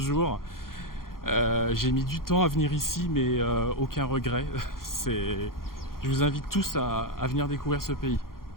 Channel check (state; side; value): late; right; 0.92 ms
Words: J'ai mis du temps à venir ici, mais aucun regret. Je vous invite tous à venir découvrir ce pays.